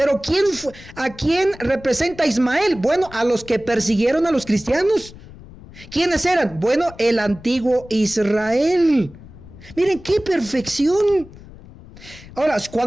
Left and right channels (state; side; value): noise; left; rumble, 19 dB below the sound